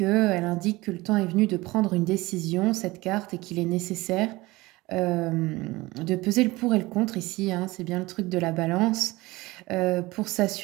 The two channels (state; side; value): quieter; left; 20.6 dB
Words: indique que le temps est venu de prendre une décision, cette carte, et qu'il est nécessaire de peser le pour et le contre ici, hein, c'est bien le truc de la balance, pour